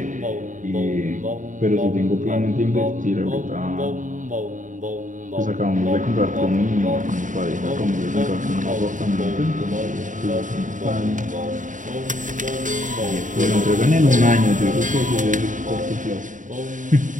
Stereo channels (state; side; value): late; left; 0.37 ms